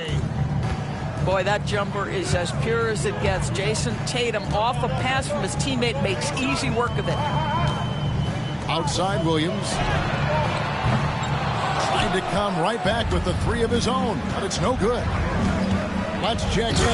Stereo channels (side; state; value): both; identical; correlation 1.00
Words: Boy, that jumper is as pure as it gets. Jason Tatum, off a pass from his teammate, makes easy work of it. Outside Williams. Trying to come right back with the 3 of his own, but it's no good. Let's check